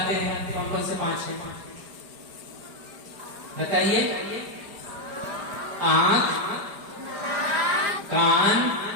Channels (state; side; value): late; left; 5.0 ms